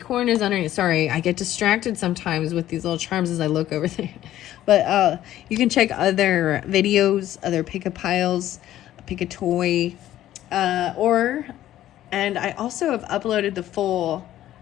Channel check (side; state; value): right; quieter; 13.2 dB